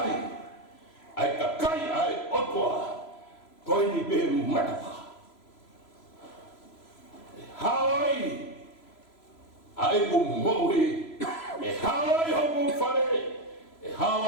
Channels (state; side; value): late; right; 3.0 ms